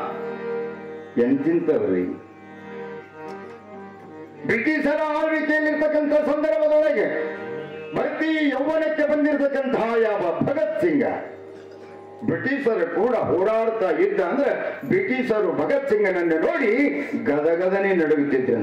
ಎಂತಿಂತವ್ರಿ. ಬ್ರಿಟಿಷರ ಆಳ್ವಿಕೆಯಲ್ಲಿರ್ತಕ್ಕಂಥ ಸಂದರ್ಭದೊಳಗೆ ಭರ್ತಿ ಯೌವನಕ್ಕೆ ಬಂದಿರತಕ್ಕಂತಹ ಯಾವ ಭಗತ್ ಸಿಂಗ ಬ್ರಿಟಿಷರು ಕೂಡ ಹೋರಾಡ್ತಾ ಇದ್ದ ಅಂದ್ರೆ ಬ್ರಿಟಿಷರು ಭಗತ್ ಸಿಂಗನನ್ನು ನೋಡಿ ಗದಗದನೆ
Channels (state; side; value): identical; both; correlation 1.00